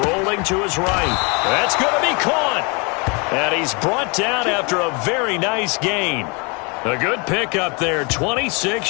rolling to his right. That's going to be caught. And he's brought down after a very nice gain. A good pickup there,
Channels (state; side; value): quieter; right; 31.4 dB